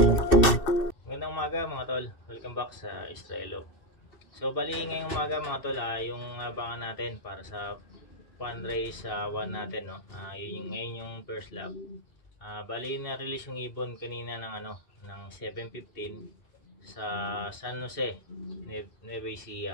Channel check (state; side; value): late; right; 2.6 ms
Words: umaga mga tol, welcome back sa Estrelo. So bali ngayong umaga mga tol, yung abangan natin para sa fundraise 1 natin, no. Ngayon yung first lap. Bali na-release yung ibon kanina ng ng 7:15 sa San Jose, Nueva